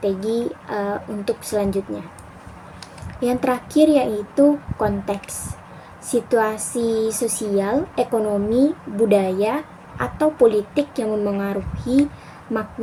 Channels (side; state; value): both; identical; correlation 1.00